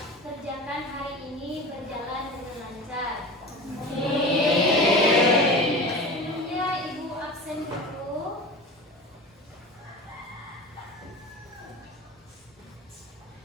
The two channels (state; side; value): normal; both; correlation 0.32